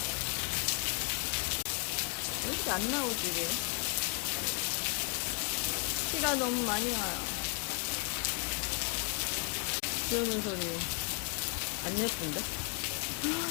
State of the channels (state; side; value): quieter; right; 35.5 dB